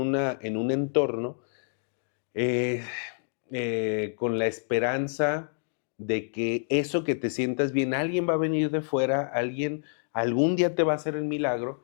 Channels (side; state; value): right; silent; digital silence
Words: entorno eh, con la esperanza de que eso que te sientas bien, alguien va a venir de fuera, alguien algún día te va a hacer el